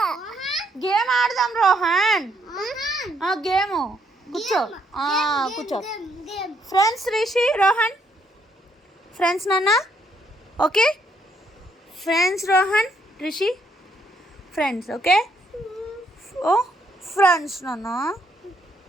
గేమ్ ఆడదాం రోహన్. గేమ్ కూర్చో కూర్చో. ఫ్రెండ్స్ రిషి రోహన్ ఫ్రెండ్స్ నాన్న. Okay friends Rohan Rishi friends. Okay ఓ ఫ్రెండ్స్ నాన్న.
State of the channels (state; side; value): normal; both; correlation 0.72